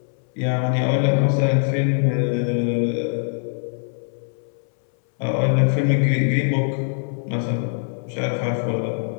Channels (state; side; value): silent; right; 63 dB below the other